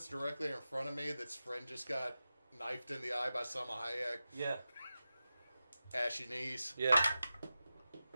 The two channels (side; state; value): both; inverted; correlation -0.93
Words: directly in front of me, that's friend just got knifed in the eye by Selma Hayek. Yeah. Ashy knees. Yeah.